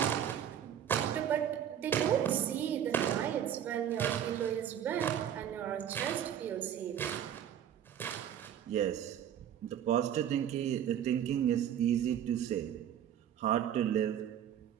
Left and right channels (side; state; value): left; quieter; 9.8 dB